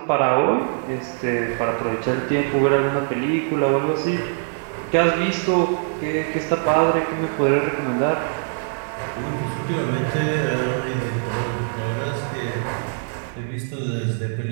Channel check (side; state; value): left; silent; 57 dB below the other